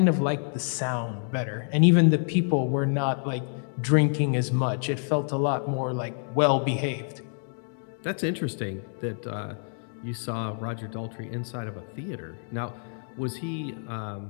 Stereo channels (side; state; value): right; silent; digital silence